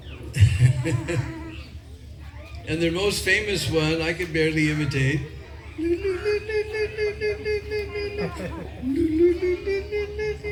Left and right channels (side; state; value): both; identical; correlation 1.00